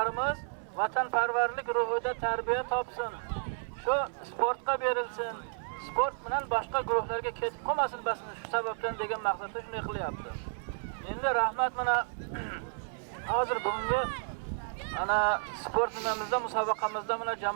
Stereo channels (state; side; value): silent; left; 56 dB below the other